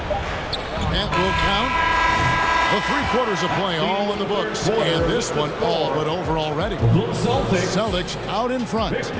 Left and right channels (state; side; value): identical; both; correlation 1.00